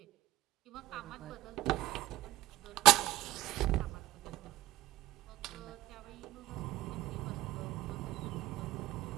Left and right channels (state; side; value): quieter; left; 16.1 dB